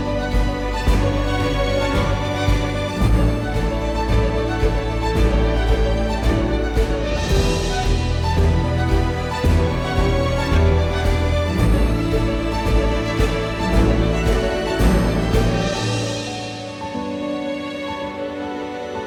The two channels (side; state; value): both; identical; correlation 1.00